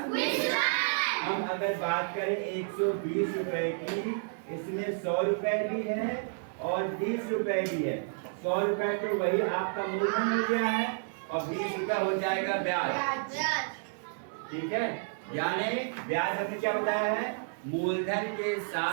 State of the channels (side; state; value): left; silent; digital silence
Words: हम अगर बात करें 120 रुपए की, इसमें 100 रुपए भी है और 20 रुपए भी है। 100 रुपए तो वही आपका मूलधन हो गया है और 20 रुपए हो जाएगा ब्याज। ठीक है, यानी ब्याज हमने क्या बताया है? मूलधन के